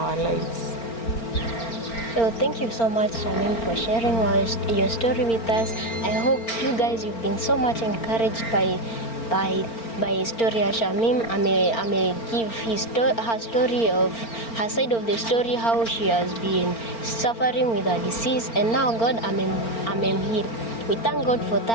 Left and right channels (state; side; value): late; right; 4.4 ms